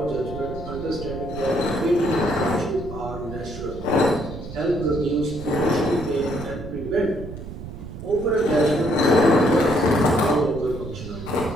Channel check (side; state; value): right; noise; rumble, 11 dB below the sound